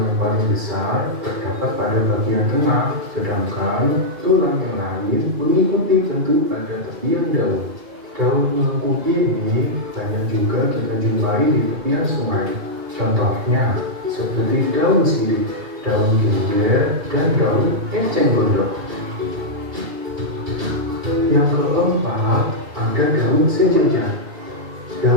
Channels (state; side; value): late; left; 2.4 ms